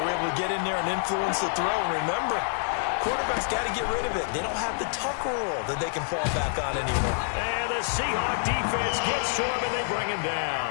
were able to get in there and influence the throw. And remember, quarterbacks got to get rid of it. They don't have the tuck rule that they can fall back on anymore. And the Seahawk defense gets to him, and they bring him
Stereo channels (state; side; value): silent; right; digital silence